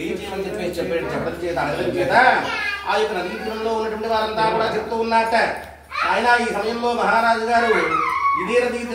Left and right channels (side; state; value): both; identical; correlation 1.00